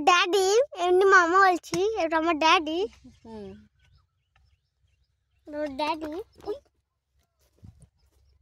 ড্যাডি, এমনি মামা বলছি, এটা আমার ড্যাডি। ড্যাডি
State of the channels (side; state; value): both; identical; correlation 1.00